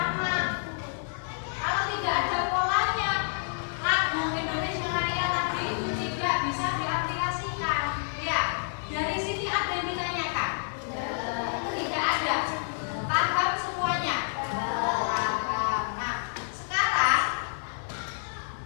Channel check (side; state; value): right; silent; 57 dB below the other